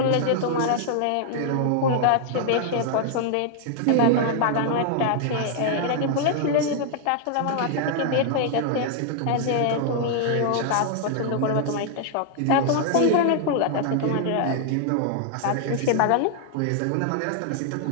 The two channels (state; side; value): different; both; correlation -0.01